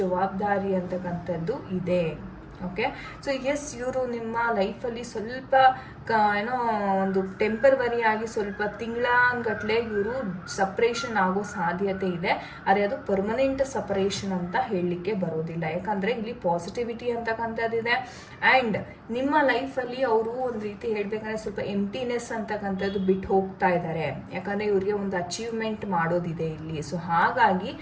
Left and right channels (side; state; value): both; identical; correlation 1.00